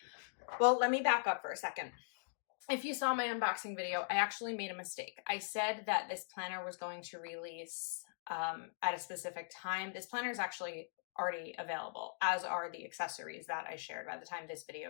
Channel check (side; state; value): right; silent; digital silence